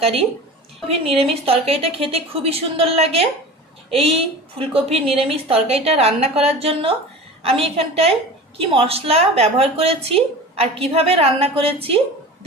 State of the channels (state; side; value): normal; both; correlation 0.35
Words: ফুলকপির নিরামিষ তরকারিটা খেতে খুবই সুন্দর লাগে। এই ফুলকপির নিরামিষ তরকারিটা রান্না করার জন্য আমি এখানটায় কি মশলা ব্যবহার করেছি আর কিভাবে রান্না করেছি,